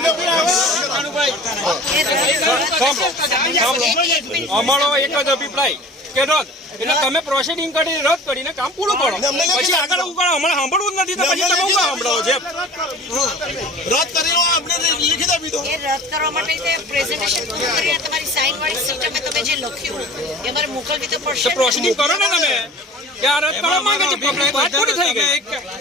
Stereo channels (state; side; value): normal; both; correlation 0.42